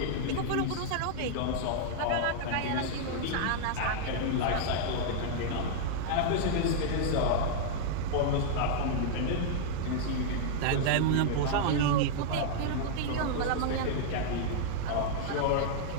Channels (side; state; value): both; different; correlation -0.01